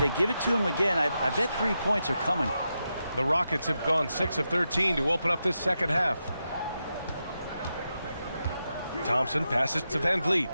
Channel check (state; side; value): inverted; both; correlation -0.87